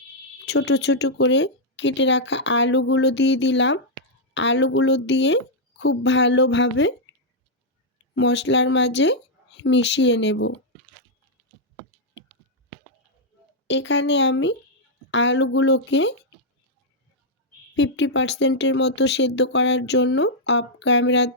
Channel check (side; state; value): both; normal; correlation -0.04